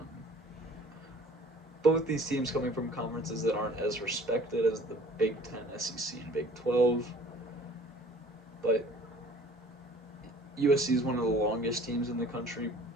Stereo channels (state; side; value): normal; both; correlation 0.50